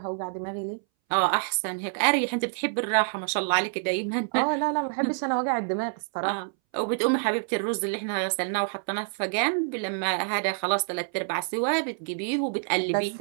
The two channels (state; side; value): silent; left; 60 dB below the other